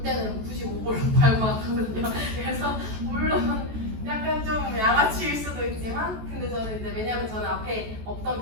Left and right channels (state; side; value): late; left; 14 ms